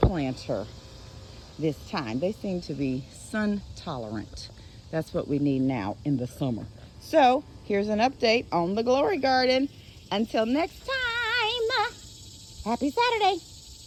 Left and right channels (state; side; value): identical; both; correlation 1.00